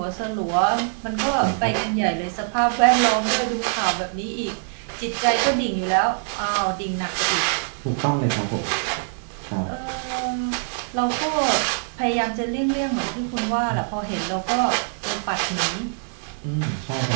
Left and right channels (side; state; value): left; silent; 62 dB below the other